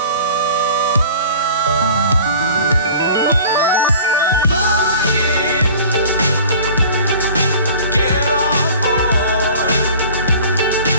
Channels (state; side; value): inverted; both; correlation -0.44